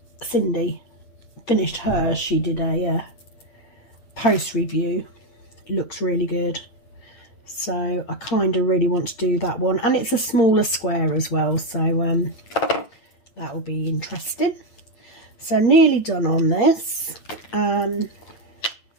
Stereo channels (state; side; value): late; right; 8.7 ms